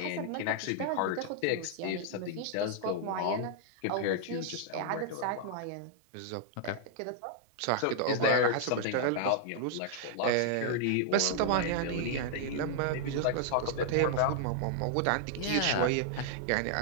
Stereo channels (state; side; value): different; both; correlation -0.01